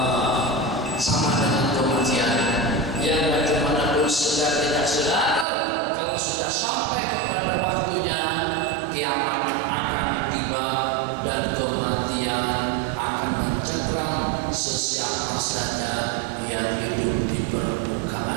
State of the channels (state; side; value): drops out; left; at 5.5 s